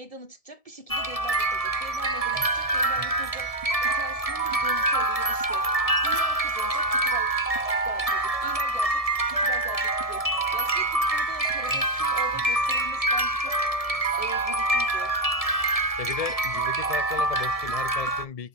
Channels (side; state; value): right; late; 1.7 ms